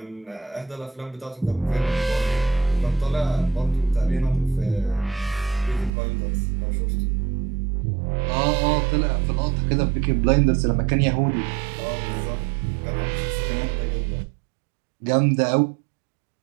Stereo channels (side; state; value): left; drops out; at 5.9 s